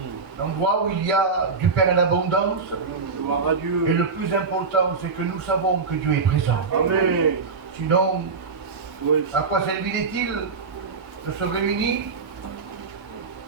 L'endroit où il y a du pain en abondance. Et le plus important, c'est que nous savons que Dieu est présent. Amen. Sinon, à quoi servirait-il de se réunir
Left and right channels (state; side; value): quieter; left; 4.8 dB